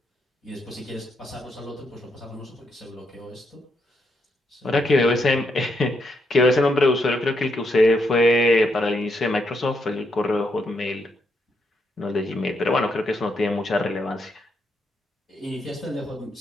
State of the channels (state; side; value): normal; both; correlation 0.79